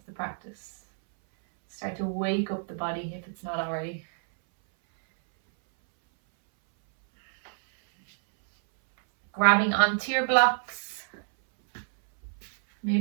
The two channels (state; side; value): silent; left; 60 dB below the other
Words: the practice. Start to wake up the body if it's not already. Grabbing onto your blocks.